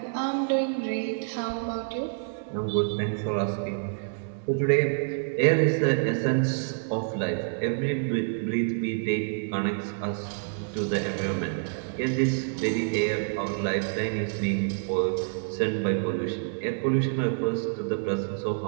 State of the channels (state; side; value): silent; left; digital silence